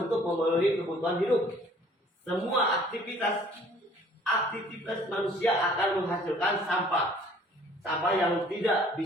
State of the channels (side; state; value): both; normal; correlation 0.55